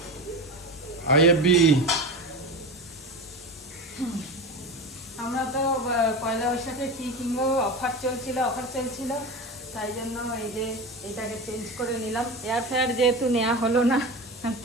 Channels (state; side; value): normal; both; correlation 0.26